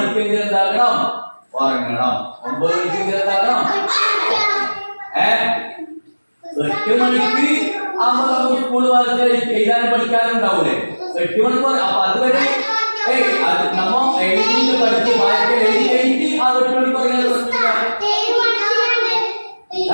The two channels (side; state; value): both; inverted; correlation -1.00